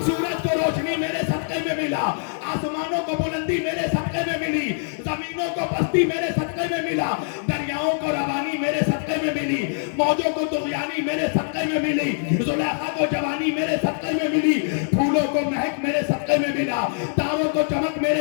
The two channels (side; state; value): right; silent; 59 dB below the other